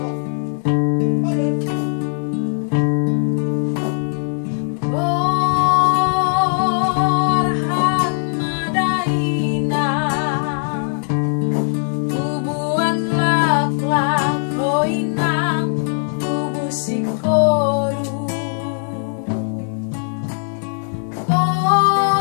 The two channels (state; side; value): silent; right; 57 dB below the other